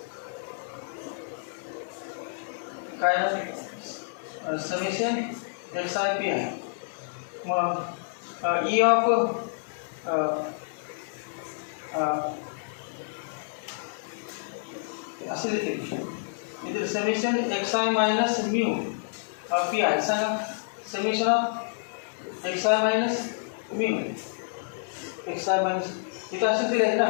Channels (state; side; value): silent; right; digital silence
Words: काय समेशन एक्स आय पी आहे मग ई ऑफ असे लिहिते इथे summation x i minus mu p i सांगा summation of x i minus mu x i minus इथं असे दिले आहे ना